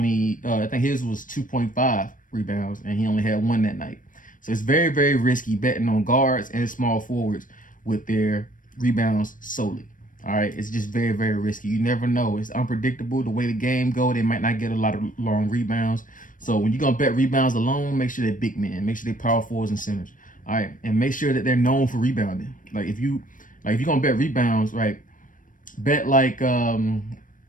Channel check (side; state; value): right; late; 0.38 ms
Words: I think his was 2.5 rebounds, and he only had 1 that night. So it's very, very risky betting on guards and small forwards with their rebounds solely. All right, it's just very, very risky. You never know. It's unpredictable. The way the game go, they might not get a lot of long rebounds. So when you're going to bet rebounds alone, make sure they're big men. Make sure they're power forwards and centers. All right, and make sure that they're known for rebounding. Like if you're gonna bet rebounds, right? Bet like a